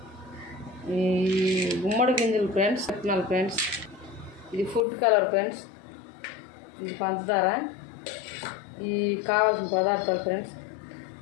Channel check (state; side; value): drops out; right; at 4.9 s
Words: ఈ గుమ్మడి గింజలు ఫ్రెండ్స్, విత్తనాలు ఫ్రెండ్స్, ఇది ఫుడ్ కలర్ ఫ్రెండ్స్, ఇది పంచదార, ఈ కావాల్సిన పదార్థాలు ఫ్రెండ్స్.